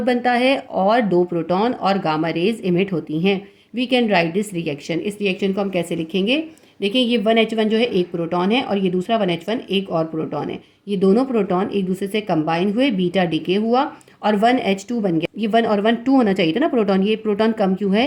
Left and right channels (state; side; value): identical; both; correlation 1.00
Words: बनता है और 2 प्रोटॉन और गामा रेज इमिट होती हैं। We can write this reaction. इस रिएक्शन को हम कैसे लिखेंगे? देखिए ये 1H1 जो है एक प्रोटॉन है और ये दूसरा 1H1 एक और प्रोटॉन है। ये दोनों प्रोटॉन एक दूसरे से कंबाइन हुए, बीटा डीके हुआ और 1H2 बन गया। ये 1 और 1 2 होना चाहिए था ना प्रोटॉन, ये प्रोटॉन कम क्यों